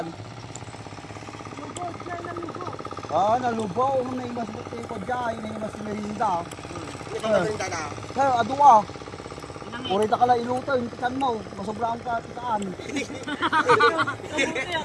Nalubaw. Naimas mo tayo ko dyan, naimas si Merinda. Hindi ka merinda na. Kaya, aduwa. Urita ka lang iluto, yung tikan mo. Masobrang ka tikaan.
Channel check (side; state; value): both; identical; correlation 1.00